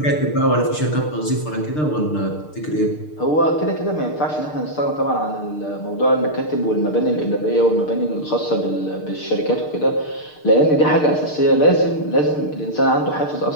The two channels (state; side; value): late; right; 6.6 ms